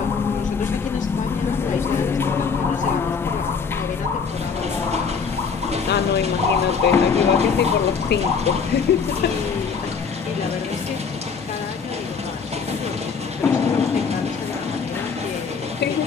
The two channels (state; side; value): quieter; right; 5.8 dB